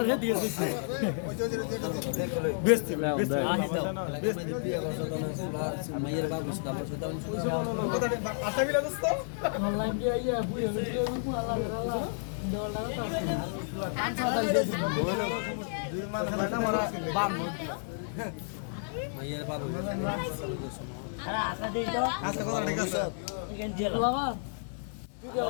রে দিয়ে দিছে বেস্ট মাইয়ের বাবু সাদা সাদা আশা বিলা দোস্ত অনলাইন দিয়ে আইয়া বুড়ি ভিডিও কো আল্লাহ দুই মাস না মারা বাম মাইয়ের বাবু আরে আশা দেই তো আচ্ছা কথা ঠিক আছে এখান দিয়ে লাবা তুই যে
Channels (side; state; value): right; silent; digital silence